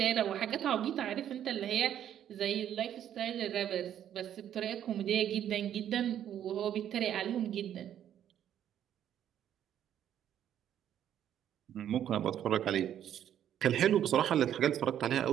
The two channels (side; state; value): left; quieter; 10.3 dB